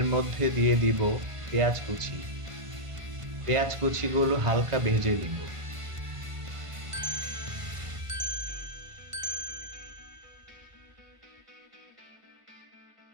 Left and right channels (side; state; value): left; late; 1.5 ms